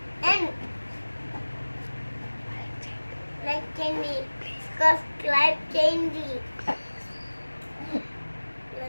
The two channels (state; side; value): inverted; both; correlation -1.00